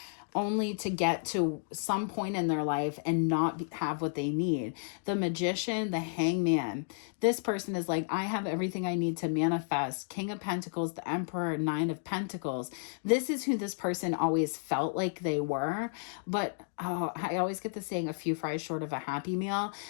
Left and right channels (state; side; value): silent; right; digital silence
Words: only to get to some point in their life and not have what they need. The Magician, the Hangman. This person is like, I have everything I need to manifest. King of Pentacles, the Emperor, Nine of Pentacles. This is who this person always felt like they were. But I always get the saying, a few fries short of a Happy Meal.